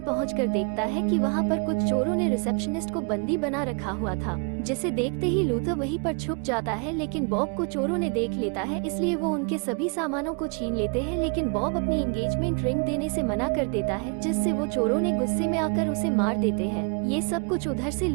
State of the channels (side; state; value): left; quieter; 35.8 dB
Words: पहुंचकर देखता है कि वहां पर कुछ चोरों ने रिसेप्शनिस्ट को बंदी बना रखा हुआ था, जिसे देखते ही लूथर वहीं पर छुप जाता है। लेकिन बॉब को चोरों ने देख लेता है, इसलिए वो उनके सभी सामानों को छीन लेते हैं। लेकिन बॉब अपनी एंगेजमेंट रिंग देने से मना कर देता है, जिससे वो चोरों ने गुस्से में आकर उसे मार देते हैं। ये सब कुछ उधर से